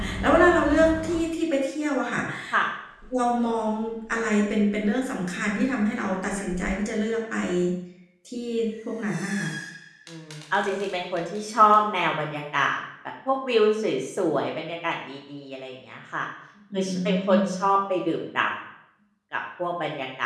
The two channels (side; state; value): both; identical; correlation 1.00